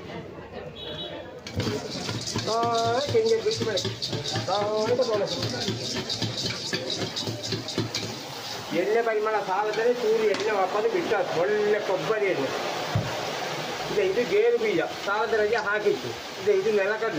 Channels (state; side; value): identical; both; correlation 1.00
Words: ತೆಂಗಿನ ಬಿಟ್ಟು ಬೆಳಗ್ಗೆ ಎಣ್ಣೆ ಪರಿಮಾಣ ಸಾಲದಲ್ಲಿ ಚೂರು ಎಣ್ಣೆ ವಾಪಸ್ ಬಿಟ್ಟು ಒಳ್ಳೆ ಕೊಬ್ಬರಿ ಎಣ್ಣೆ ಇದು ಗೇರು ಬೀಜ ಸಾಲದ ರಜೆ ಹಾಕಿತ್ತು. ಇದು